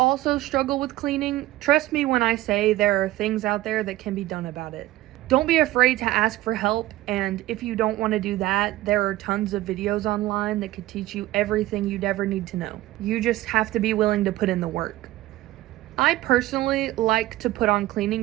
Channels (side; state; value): left; quieter; 16.5 dB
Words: struggle with cleaning, trust me when I say there are things out there that can be done about it. Don't be afraid to ask for help, and if you don't want to do that, there are tons of videos online that could teach you everything you'd ever need to know. You just have to be willing to put in the work. I personally like to put on